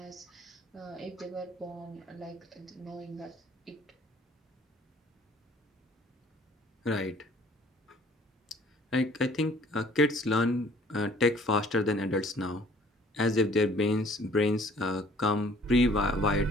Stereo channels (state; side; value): normal; both; correlation 0.56